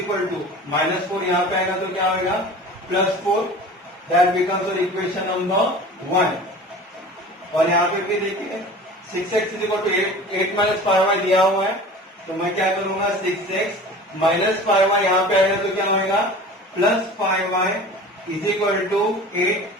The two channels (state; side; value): normal; both; correlation 0.40